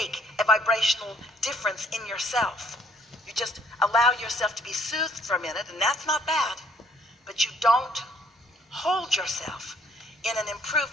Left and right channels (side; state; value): both; normal; correlation 0.64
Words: a vibrational difference in yourself. You just allow yourself to be soothed for a minute, and that's not bad. But you don't hold yourself in an